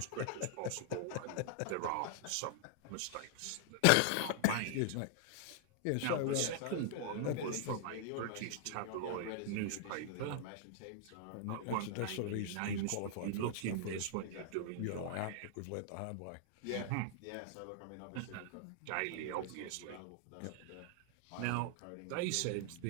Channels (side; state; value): both; different; correlation -0.01